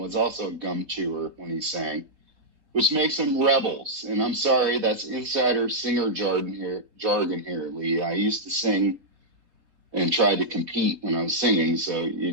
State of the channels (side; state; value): left; late; 3.9 ms